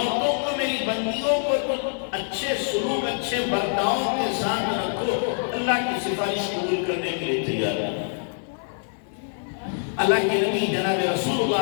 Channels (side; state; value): right; silent; digital silence